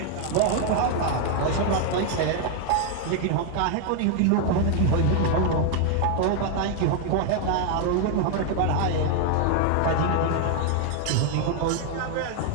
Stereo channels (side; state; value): both; different; correlation 0.00